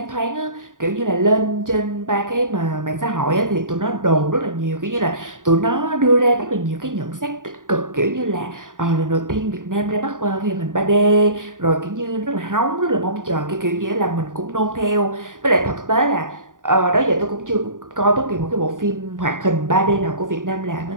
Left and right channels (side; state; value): left; late; 0.88 ms